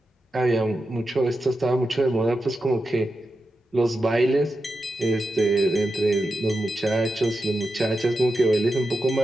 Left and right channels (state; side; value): normal; both; correlation 0.89